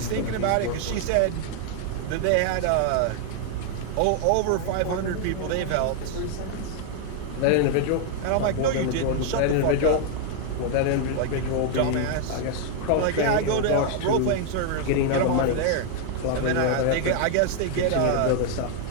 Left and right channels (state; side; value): different; both; correlation 0.00